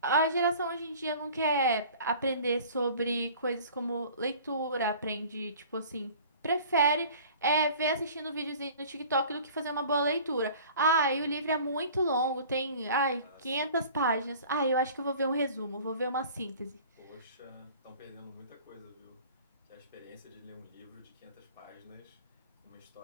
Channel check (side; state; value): both; inverted; correlation -0.46